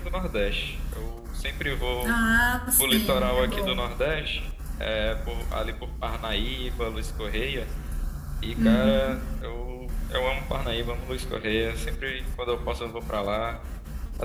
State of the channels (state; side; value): identical; both; correlation 1.00